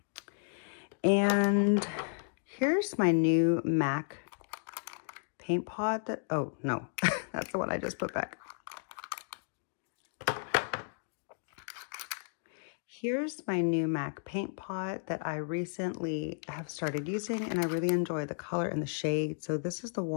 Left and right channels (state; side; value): silent; right; digital silence